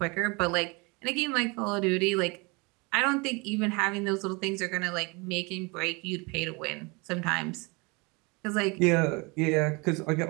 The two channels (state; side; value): quieter; left; 28.1 dB